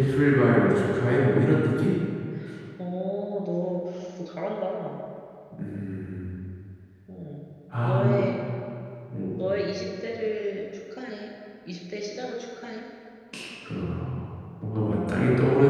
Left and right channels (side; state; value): both; identical; correlation 1.00